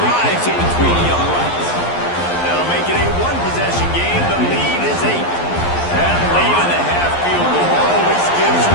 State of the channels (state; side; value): late; right; 11 ms